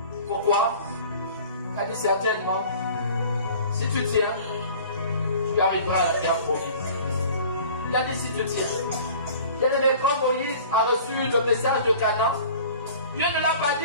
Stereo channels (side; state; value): both; inverted; correlation -0.45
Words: Pourquoi? Il a dit certainement, si tu tiens, tu arriveras à la terre promise. Il a dit si tu tiens. Bien-aimé, quand Moïse a reçu le message de Canaan, Dieu ne l'a pas